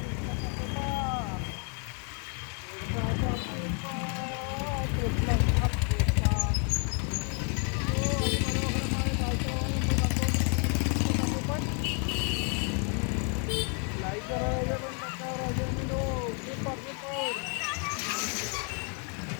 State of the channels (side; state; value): right; quieter; 39.6 dB